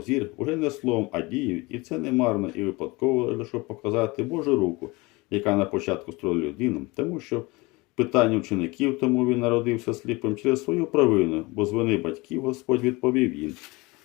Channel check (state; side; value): quieter; right; 24.0 dB